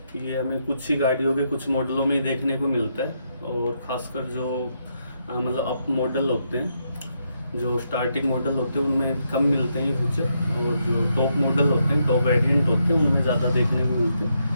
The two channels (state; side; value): inverted; both; correlation -0.79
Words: ये हमें कुछ ही गाड़ियों के कुछ मॉडलों में ही देखने को मिलता है, और ख़ासकर जो मतलब अप मॉडल होते हैं, जो स्टार्टिंग मॉडल होते हैं उनमें कम मिलते हैं ये फीचर, और जो टॉप मॉडल होते हैं, टॉप वेरिएंट होते हैं, उनमें ज़्यादा देखने को मिलते